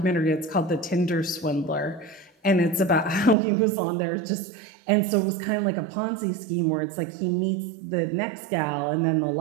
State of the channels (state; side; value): drops out; left; at 3.4 s